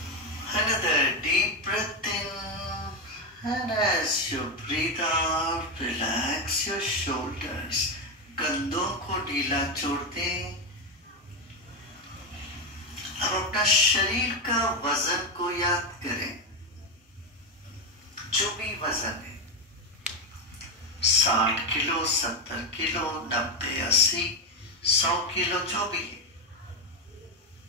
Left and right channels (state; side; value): normal; both; correlation 0.09